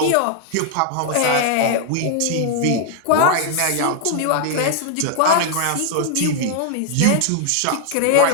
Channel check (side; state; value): both; different; correlation -0.01